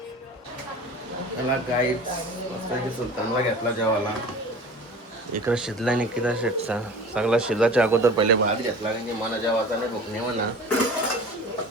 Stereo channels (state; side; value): normal; both; correlation 0.40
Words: त्याला गाईच मस्त सुलतानला घेतला जेवायला. इकडं शिजला निकिता शेटचा सगळा. शिजाच्या अगोदर पहिले भात घेतला, कारण की मला जेवायचा नाही, भूक नाही म्हणा.